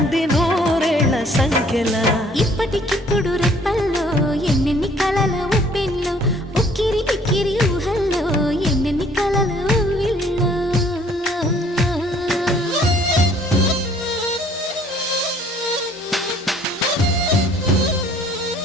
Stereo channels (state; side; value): normal; both; correlation 0.59